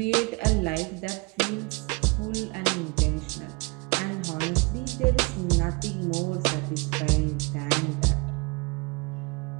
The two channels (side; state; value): left; quieter; 28.6 dB